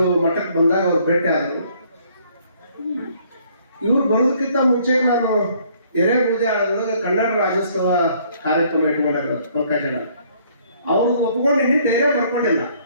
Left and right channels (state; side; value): inverted; both; correlation -0.63